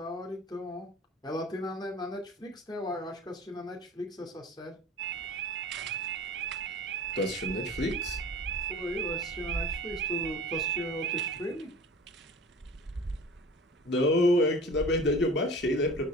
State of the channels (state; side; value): normal; both; correlation 0.40